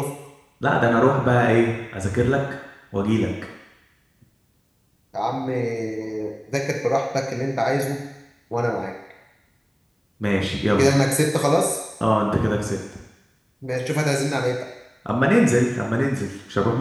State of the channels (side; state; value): both; identical; correlation 1.00